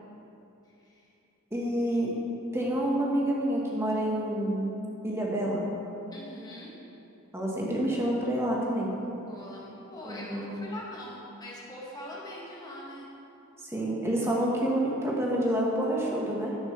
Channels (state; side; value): normal; both; correlation 0.62